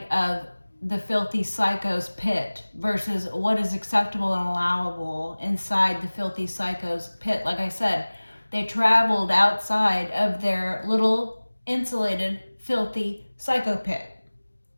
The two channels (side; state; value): both; inverted; correlation -1.00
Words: of the filthy psycho's pit versus what is acceptable and allowable inside the filthy psycho's pit. Like I said, they traveled outside of their little insulated filthy psycho pit.